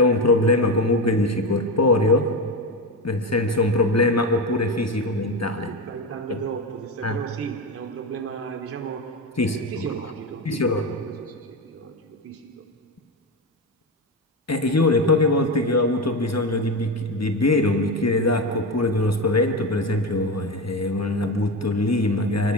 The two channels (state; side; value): normal; both; correlation 0.18